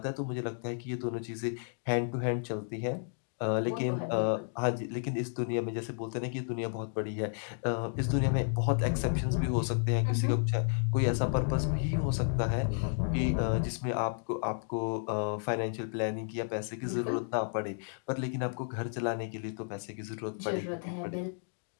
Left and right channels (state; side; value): silent; right; digital silence